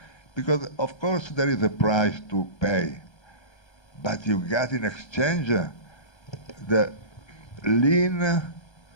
Because, of course, there is a price to pay. But you got in exchange the lean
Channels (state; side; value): late; right; 1.3 ms